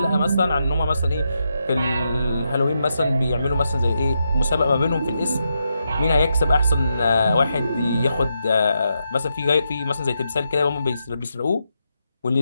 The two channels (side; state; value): both; inverted; correlation -0.83